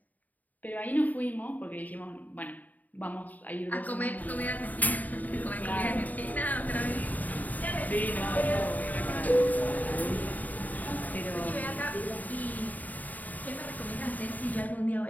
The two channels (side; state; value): right; late; 0.079 ms